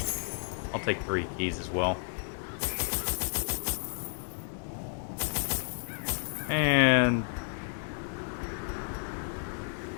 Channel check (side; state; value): right; silent; 57 dB below the other